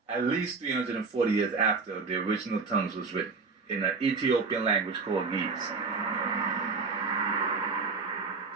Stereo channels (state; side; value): quieter; left; 4.5 dB